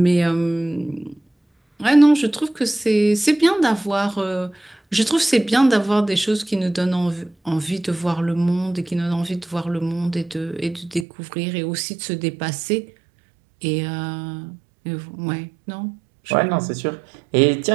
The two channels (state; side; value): drops out; left; at 11.1 s